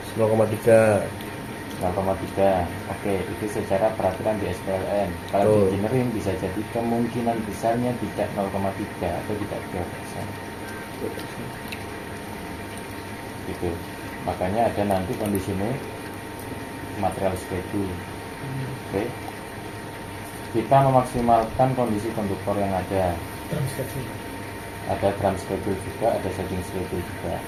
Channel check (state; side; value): identical; both; correlation 1.00